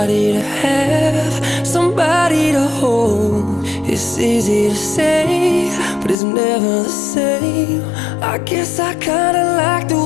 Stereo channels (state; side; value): drops out; right; at 6.2 s